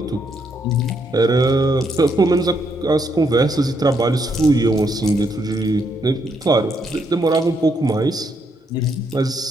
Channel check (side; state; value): both; normal; correlation 0.75